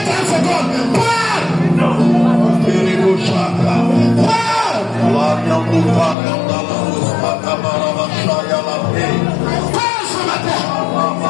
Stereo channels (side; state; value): right; drops out; at 6.2 s